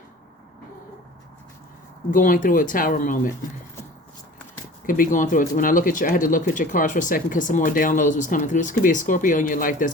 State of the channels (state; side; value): normal; both; correlation 0.43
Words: going through a tower moment. Could be going through it. When I look at I had to look at your cards for a second because some more downloads was coming through. This could be a Scorpio in your life that's